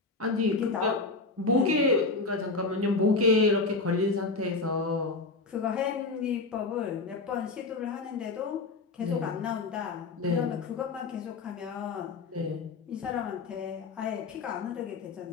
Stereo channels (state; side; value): quieter; right; 3.8 dB